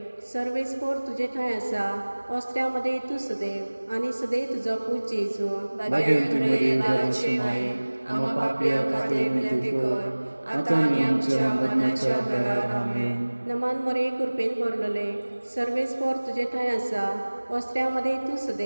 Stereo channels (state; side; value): inverted; both; correlation -1.00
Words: सर्वेस्पोर तुजे ठांय आसा अस्त्र्यामध्ये तूं सदैव आनी सदैव तुजो पूत जेजू भाग्यवान मरिये देवाची माय आम्हा पापया खातीर विनंती कर आता आनी आमच्या मरणाच्या वेळार आमेन. नमान मोरे कृपेन भरलेले सर्वेस्पोर तुजे ठांय आसा अस्त्र्यामध्ये तूं